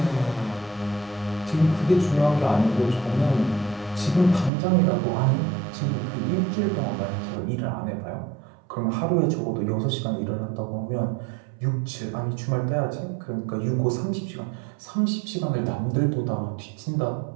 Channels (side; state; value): left; drops out; at 4.5 s